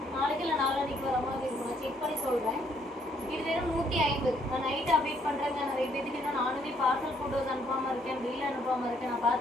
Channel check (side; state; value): both; normal; correlation 0.68